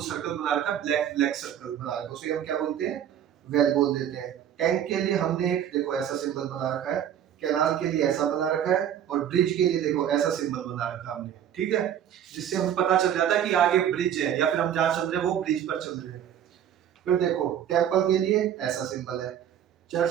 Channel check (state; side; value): quieter; left; 9.9 dB